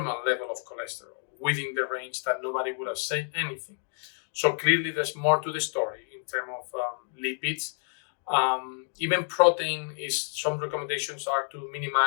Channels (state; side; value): silent; right; 59 dB below the other